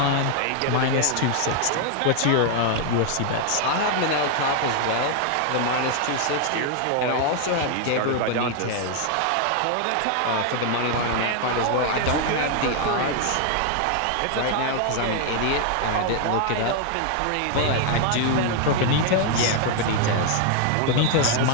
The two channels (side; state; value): both; different; correlation 0.00